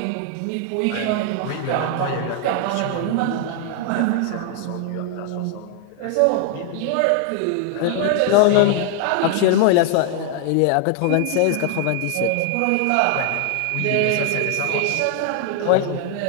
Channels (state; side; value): different; both; correlation 0.00